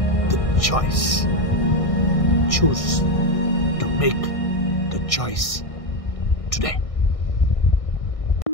the choice. Choose to make the choice today.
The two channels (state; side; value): late; right; 1.6 ms